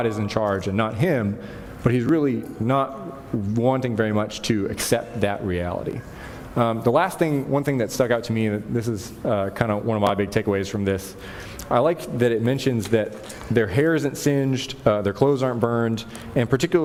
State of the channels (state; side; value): identical; both; correlation 1.00